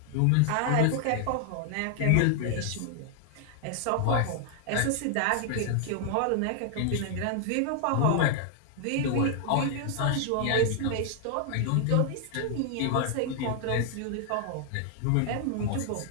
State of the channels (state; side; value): different; both; correlation 0.00